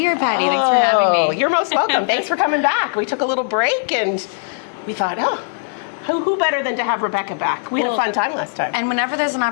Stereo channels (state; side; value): silent; right; digital silence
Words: Patty. Thanks for having me. You're most welcome. Thanks for coming back. We took a little break and we thought, who better than to have Rebekah back? We had a fun time last time. And whenever there's an